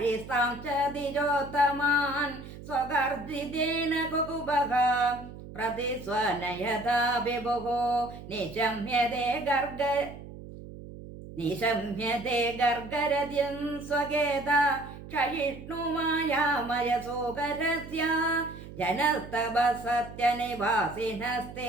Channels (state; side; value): noise; right; hum, 14 dB below the sound